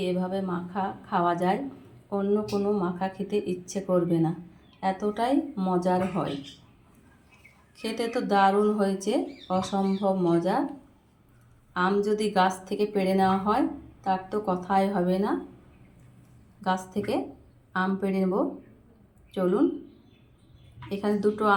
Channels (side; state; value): both; identical; correlation 1.00